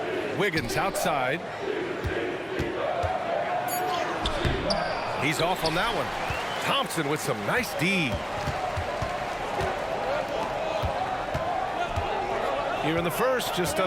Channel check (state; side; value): identical; both; correlation 1.00